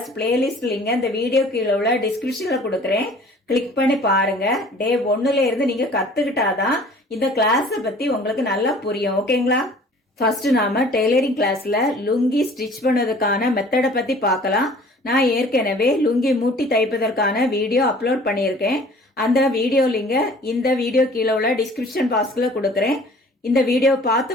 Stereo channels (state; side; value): normal; both; correlation 0.50